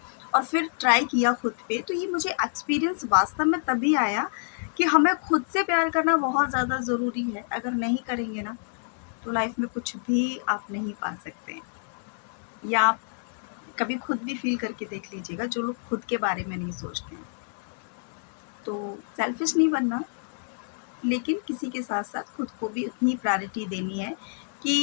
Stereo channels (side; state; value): right; silent; 60 dB below the other